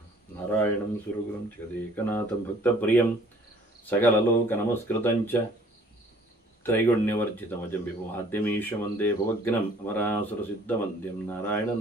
नारायणं सुरगुरुं जगदेकनाथं भक्तप्रियं सकललोकनमस्कृतं च त्रैगुण्यवर्जितमजं विभुमाद्यमीश वन्दे भवग्नम् अमरासुरसिद्धवन्द्यं नारायणं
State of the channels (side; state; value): both; normal; correlation 0.56